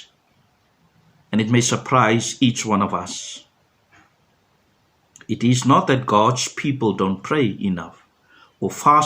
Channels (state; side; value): identical; both; correlation 1.00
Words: and it may surprise each one of us. It is not that God's people don't pray enough, or